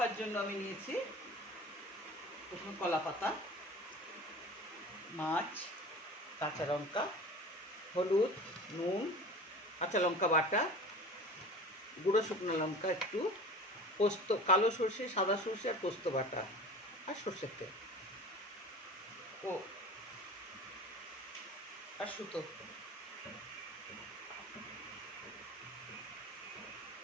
জন্য আমি নিয়েছি প্রথমে কলা পাতা, মাছ, কাঁচা লঙ্কা, হলুদ, নুন, কাঁচা লঙ্কা বাটা, গুঁড়ো শুকনো লঙ্কা একটু, পোস্ত, কালো সর্ষে, সাদা সর্ষে আর পোস্ত বাটা, আর সর্ষের তেল ও আর সুতো।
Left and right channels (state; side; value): normal; both; correlation 0.38